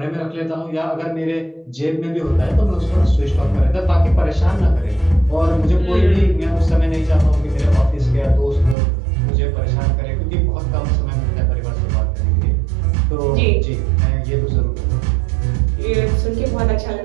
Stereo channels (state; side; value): drops out; left; at 8.8 s